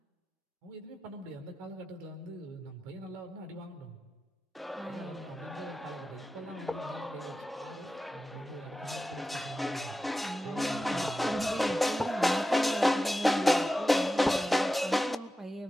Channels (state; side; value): normal; both; correlation 0.93